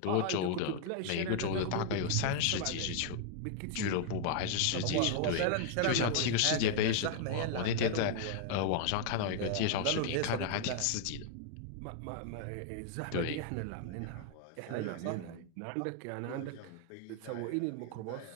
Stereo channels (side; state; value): both; different; correlation 0.00